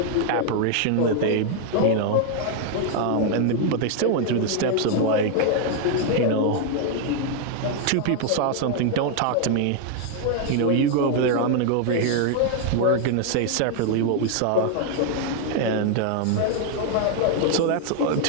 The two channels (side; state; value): both; different; correlation 0.00